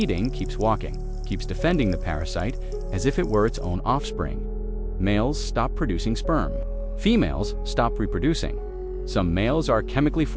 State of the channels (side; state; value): both; identical; correlation 1.00